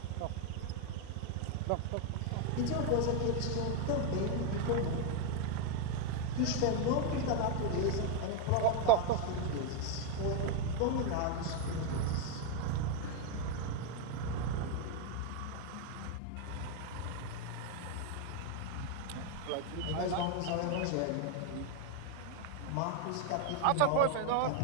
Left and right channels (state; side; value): different; both; correlation 0.01